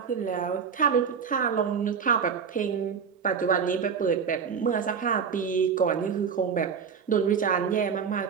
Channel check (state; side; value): quieter; left; 6.5 dB